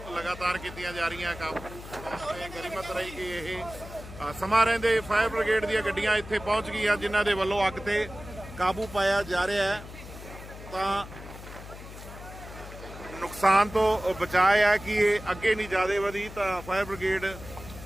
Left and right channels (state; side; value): noise; left; hum, 14 dB below the sound